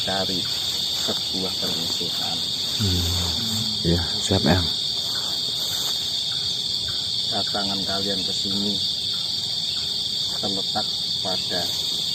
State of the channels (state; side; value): identical; both; correlation 1.00